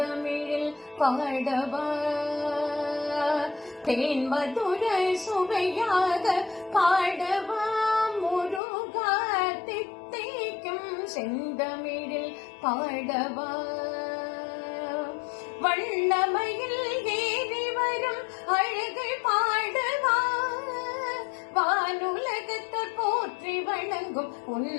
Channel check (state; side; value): drops out; right; at 8.6 s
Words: பாடவா தேன் மதுர சுவையாக பாடவா முருகா தித்திக்கும் செந்தமிழில் பாடவா வண்ணமையில் ஏறி வரும் அழகை பாடவா வானுலகத்தை போற்றி வணங்கும்